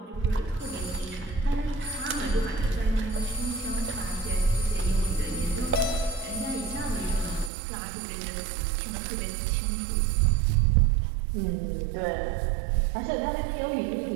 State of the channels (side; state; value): left; drops out; at 7.5 s